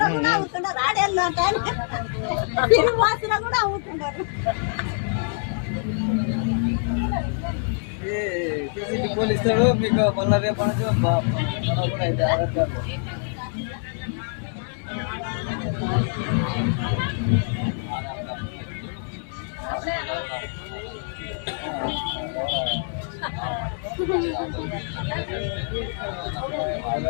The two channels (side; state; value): right; silent; 57 dB below the other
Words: అవుతున్నారు, ఆడేళ్ళు తిరుగు బస్సులో కూడా అవుతున్నారు. పోలీసులు మీకు మళ్ళీ రేపు కూడా అయితే ఆధార్ కార్డు